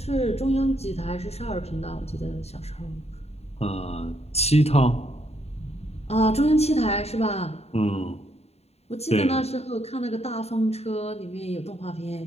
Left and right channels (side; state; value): right; late; 0.30 ms